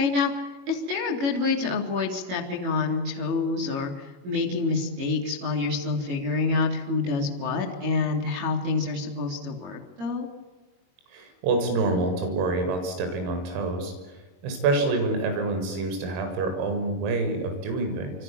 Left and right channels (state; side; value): late; left; 22 ms